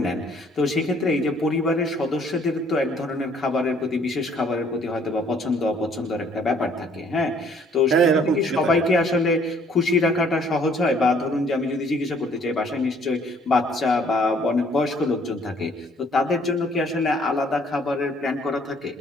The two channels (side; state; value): both; normal; correlation 0.61